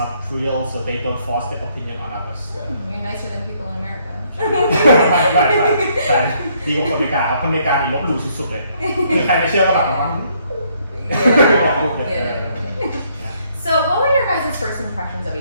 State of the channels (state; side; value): inverted; both; correlation -0.69